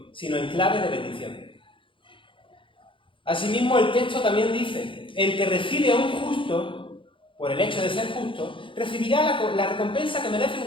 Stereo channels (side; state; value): right; late; 0.25 ms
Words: sino en clave de bendición. Asimismo, el texto también dice: el que recibe a un justo, por el hecho de ser justo, recibirá la recompensa que merece